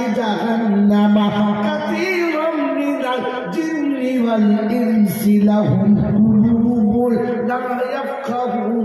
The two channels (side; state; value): both; identical; correlation 1.00